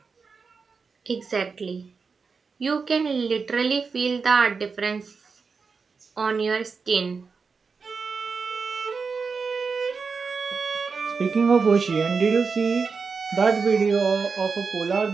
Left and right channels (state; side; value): quieter; left; 5.0 dB